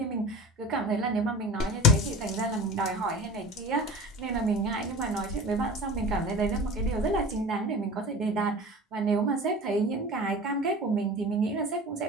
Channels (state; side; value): normal; both; correlation 0.36